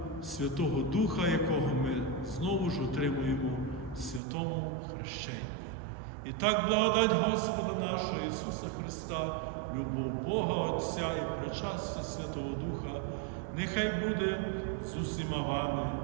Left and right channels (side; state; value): left; drops out; at 4.2 s